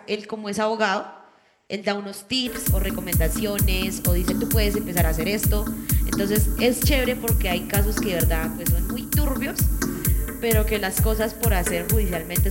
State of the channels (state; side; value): identical; both; correlation 1.00